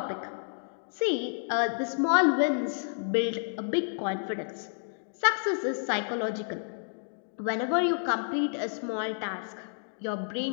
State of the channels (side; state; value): right; silent; digital silence